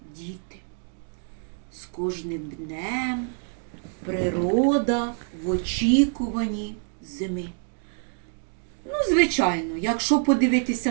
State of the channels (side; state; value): left; silent; 61 dB below the other